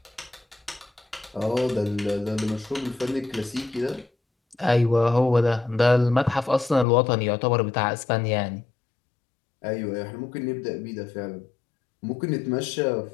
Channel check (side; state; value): right; drops out; at 6.9 s